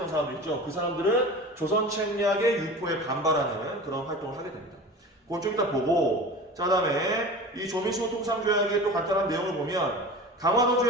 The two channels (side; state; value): both; normal; correlation 0.35